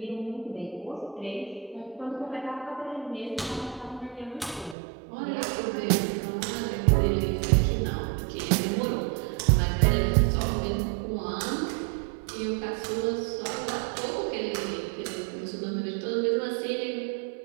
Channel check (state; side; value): drops out; left; at 4.8 s